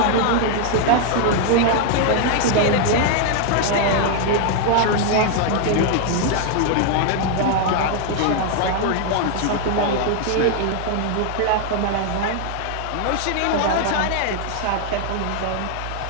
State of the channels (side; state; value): both; different; correlation 0.00